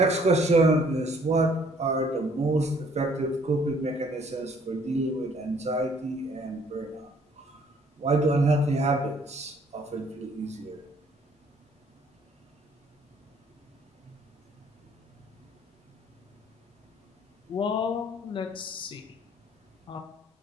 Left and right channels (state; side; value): normal; both; correlation 0.61